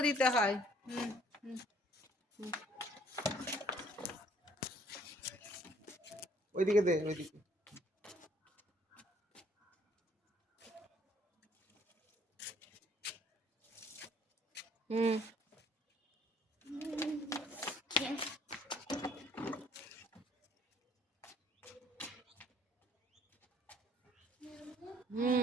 দিতে হয়। হুম হুম। ওইদিকে দে, ওইদিকে। হুম হুম,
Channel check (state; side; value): normal; both; correlation 0.60